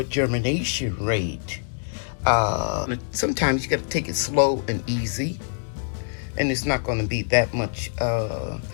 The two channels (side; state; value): right; silent; digital silence